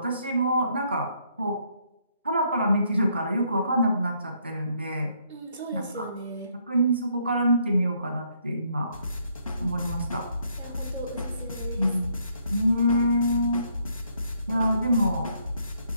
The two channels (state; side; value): inverted; both; correlation -0.70